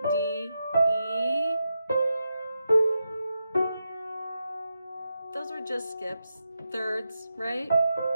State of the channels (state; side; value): inverted; both; correlation -0.87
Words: D, E. Those were just skips, thirds, right?